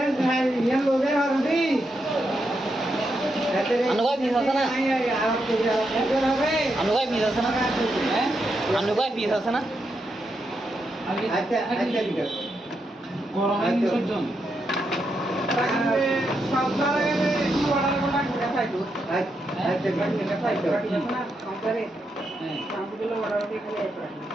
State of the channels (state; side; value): normal; both; correlation 0.83